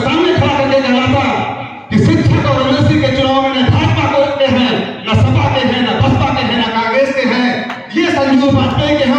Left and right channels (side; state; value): both; identical; correlation 1.00